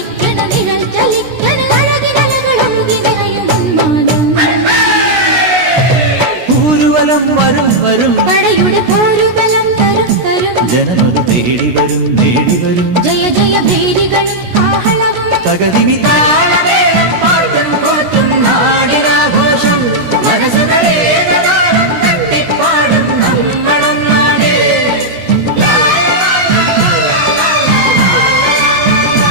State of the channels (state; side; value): late; left; 16 ms